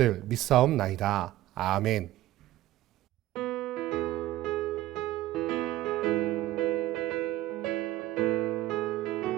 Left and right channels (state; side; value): quieter; left; 15.4 dB